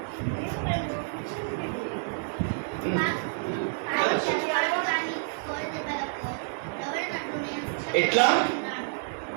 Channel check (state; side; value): silent; left; 59 dB below the other